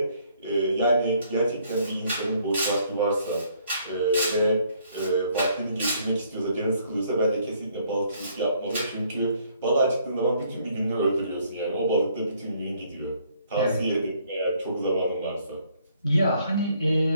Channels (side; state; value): both; inverted; correlation -0.65